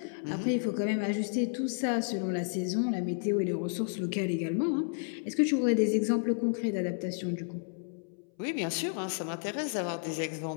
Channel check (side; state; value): right; silent; 57 dB below the other